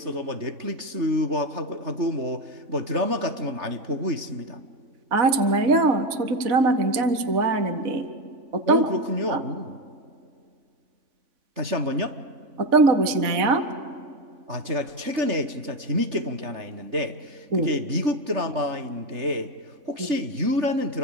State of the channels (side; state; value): left; late; 3.5 ms